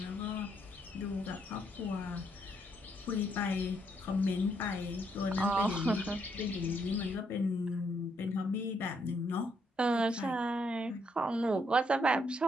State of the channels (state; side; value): normal; both; correlation 0.74